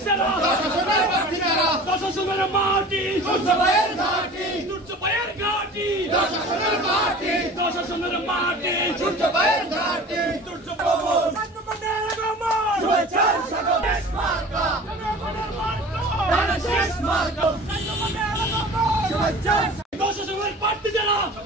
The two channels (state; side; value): normal; both; correlation 0.41